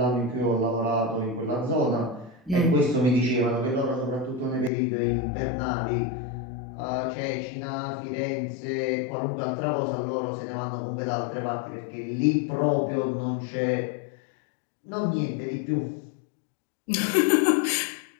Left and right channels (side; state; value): right; drops out; at 4.7 s